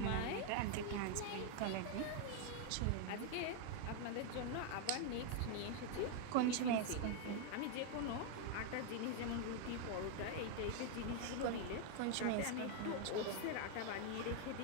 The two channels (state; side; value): different; both; correlation 0.00